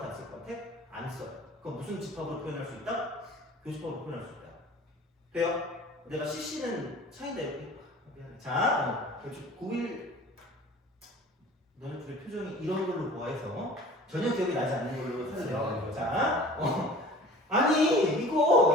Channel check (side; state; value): both; normal; correlation 0.44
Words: 안 쓸 것 같아? 안 써요. 그럼 무슨 집합으로 표현할 수 있다? 교집합으로 표현할 수 있다. 돼요? 내가 CC는 차이다 이렇게. 자, 고1 너네 둘의 표정이 이런 걸로 보아해서 전혀 기억이 나지 않는 걸로 찾아내는 거자. 아니